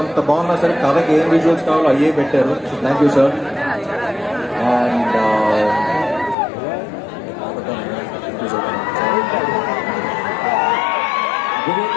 అంత బాగున్నా సరే కథకి ఏం విజువల్స్ కావాలో అయ్యే పెట్టారు. So thank you sir. And Vivek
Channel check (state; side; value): drops out; right; at 6.4 s